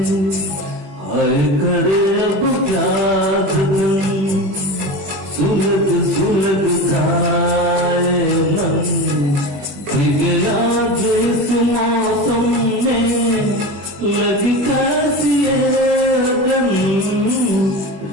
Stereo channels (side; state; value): left; late; 21 ms